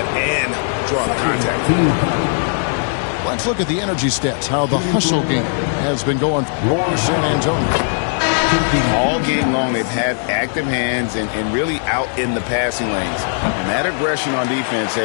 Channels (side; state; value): right; silent; digital silence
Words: and draw the contact. Let's look at the energy stats, how the hustle game has been going for San Antonio. All game long, they've had active hands and really out in the passing lanes. And that aggression on defense